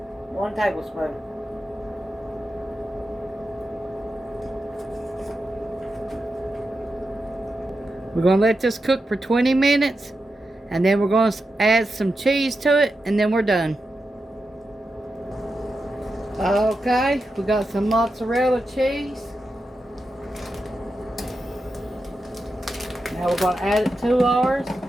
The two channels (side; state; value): both; normal; correlation 0.89